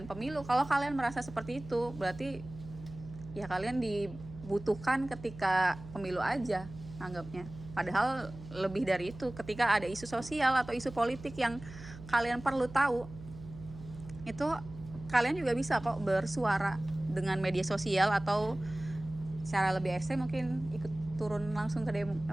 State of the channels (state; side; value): noise; right; hum, 15 dB below the sound